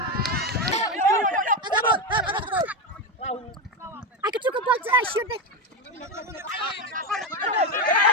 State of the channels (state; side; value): normal; both; correlation 0.13